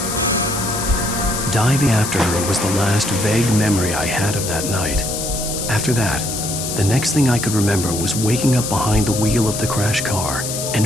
Diving after her was the last vague memory I had of that night. After that, the next thing I could remember was waking up behind the wheel of the crashed car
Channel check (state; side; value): noise; left; hiss, 5 dB below the sound